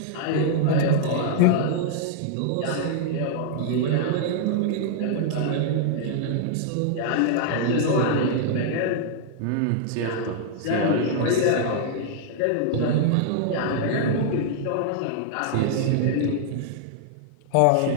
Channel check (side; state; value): both; different; correlation -0.01